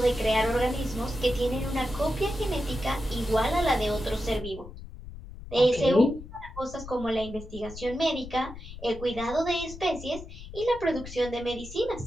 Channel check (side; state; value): left; noise; rumble, 13 dB below the sound